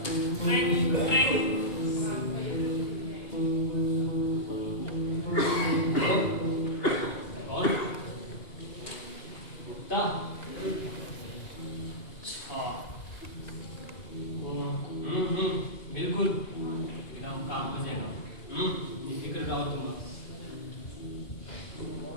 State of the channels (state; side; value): late; right; 2.8 ms